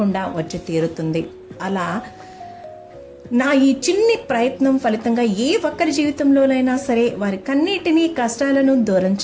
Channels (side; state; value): both; identical; correlation 1.00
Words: వచ్చి తీరుతుంది. అలా నా ఈ చిన్ని ప్రయత్నం ఫలితంగా ఏ ఒక్కరి జీవితంలోనైనా సరే వారి కన్నిటినీ కష్టాలను దూరం